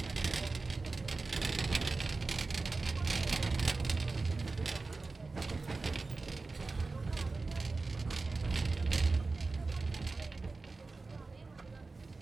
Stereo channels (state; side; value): quieter; left; 3.7 dB